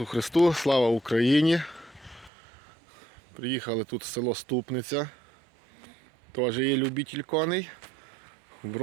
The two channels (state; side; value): drops out; left; at 2.3 s